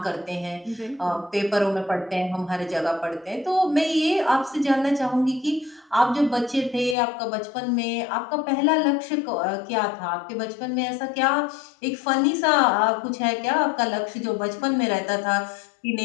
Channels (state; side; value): drops out; right; at 7.0 s